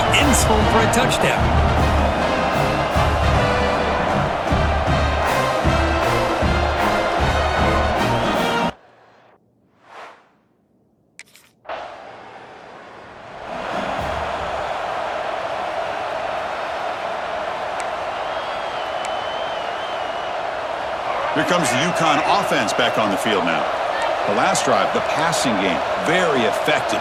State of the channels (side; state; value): both; identical; correlation 1.00